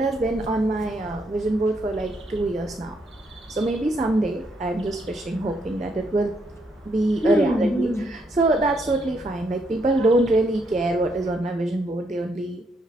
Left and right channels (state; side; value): normal; both; correlation 0.75